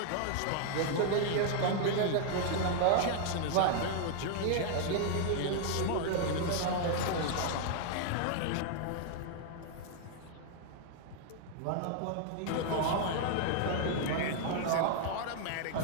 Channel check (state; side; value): different; both; correlation 0.00